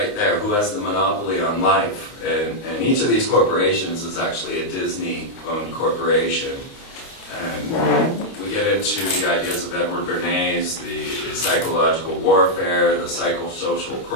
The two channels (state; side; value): late; right; 29 ms